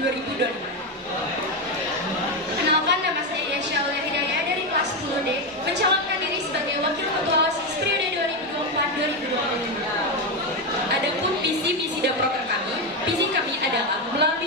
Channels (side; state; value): both; normal; correlation 0.11